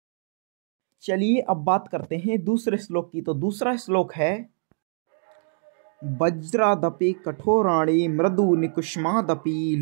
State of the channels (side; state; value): left; silent; digital silence